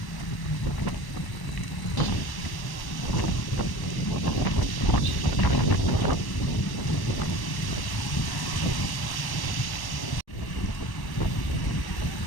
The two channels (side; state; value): right; late; 1.1 ms